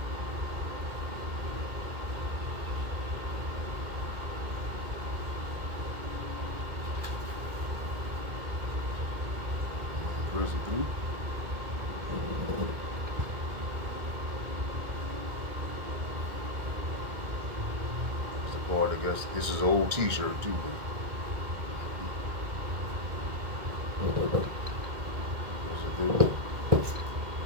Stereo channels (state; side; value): late; left; 1.5 ms